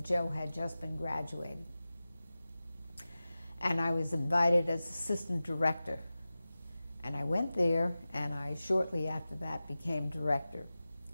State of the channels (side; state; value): both; inverted; correlation -0.96